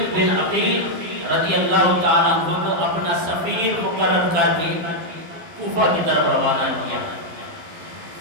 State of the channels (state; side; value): late; left; 12 ms